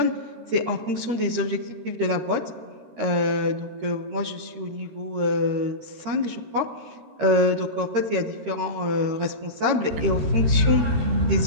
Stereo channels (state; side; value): late; left; 13 ms